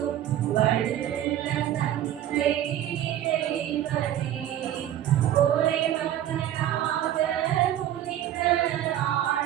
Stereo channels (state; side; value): quieter; left; 11.8 dB